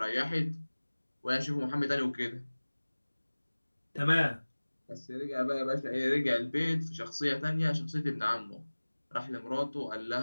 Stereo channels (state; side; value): inverted; both; correlation -1.00